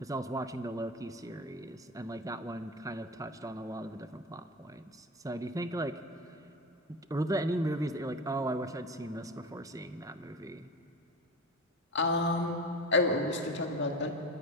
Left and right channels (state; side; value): normal; both; correlation 0.28